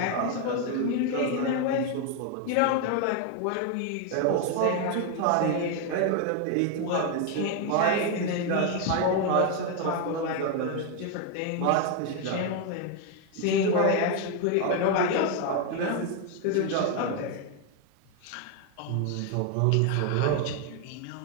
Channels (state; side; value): different; both; correlation 0.01